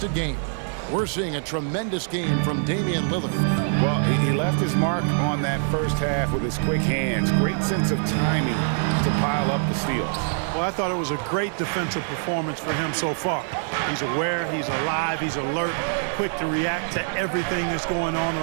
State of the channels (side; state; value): left; silent; digital silence